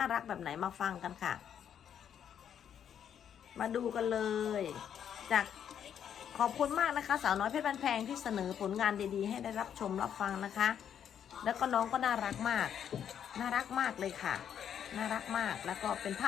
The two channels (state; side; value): quieter; right; 8.9 dB